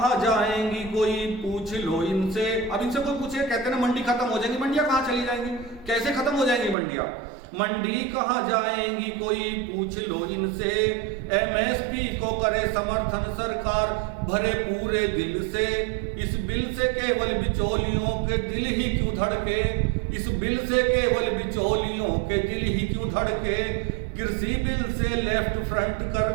जाएंगी कोई पूछ लो इनसे। अब इनसे कोई पूछे, कहते हैं ना मंडी खत्म हो जाएंगी, मंडियां कहाँ चली जाएंगी, कैसे खत्म हो जाएंगी मंडियां। मंडी कहाँ जाएंगी कोई पूछ लो इनसे, एमएसपी को करे समर्थन सरकार भरे पूरे दिल से। इस बिल से केवल बिचौलियों के दिल ही क्यों धड़के, इस बिल से केवल बिचौलियों के दिल ही क्यों धड़के। कृषि बिल से लेफ्ट फ्रंट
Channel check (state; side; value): drops out; left; at 6.8 s